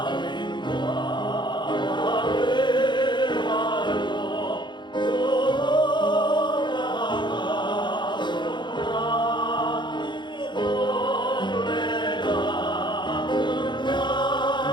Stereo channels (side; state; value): right; late; 0.22 ms